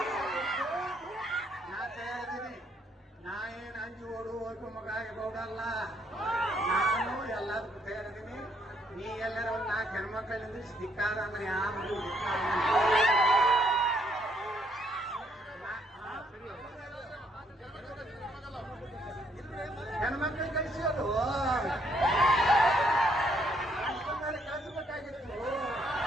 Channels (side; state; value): both; normal; correlation 0.70